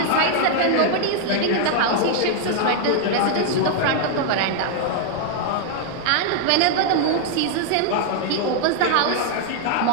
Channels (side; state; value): both; different; correlation 0.00